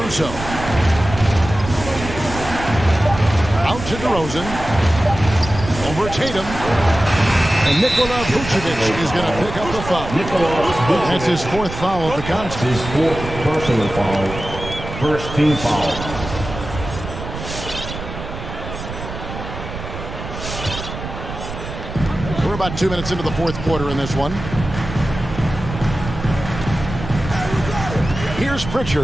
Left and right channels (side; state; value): right; noise; rumble, 9 dB below the sound